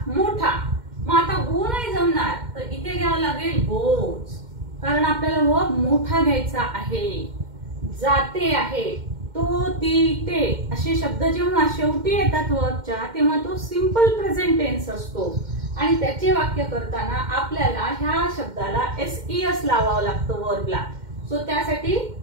मोठा. मग आता गो नाही जमणार तर इथे घ्यावं लागेल गोज, कारण आपल्याला वर्ब मोठा घ्यायचा आहे. जाते आहे, तो ती ते असे शब्द जेव्हा शेवटी येतात वर्बच्या तेव्हा तो सिंपल प्रेझेंट टेन्स असतो आणि त्याचे वाक्य करताना आपल्याला ह्या शब्दाला एस लावावं लागतं वर्बला. सो त्यासाठी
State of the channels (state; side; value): late; left; 2.1 ms